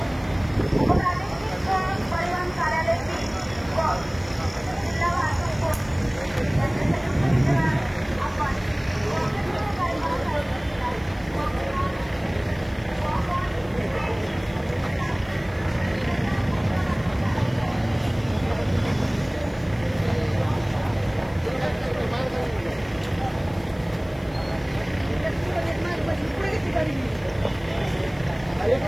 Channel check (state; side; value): noise; left; hiss, 28 dB below the sound